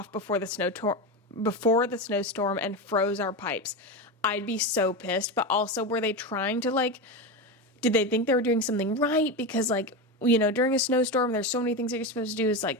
before the snowstorm and froze our pipes. I'd be so pissed, but also were they trying to did they think they were doing something right? Because during a snowstorm, there's so many things that you're supposed to do is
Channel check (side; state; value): both; normal; correlation 0.18